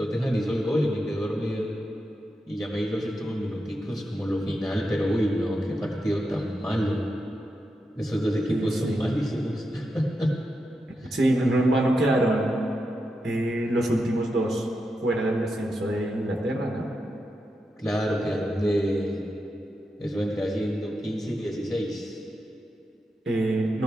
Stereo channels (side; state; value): both; normal; correlation 0.87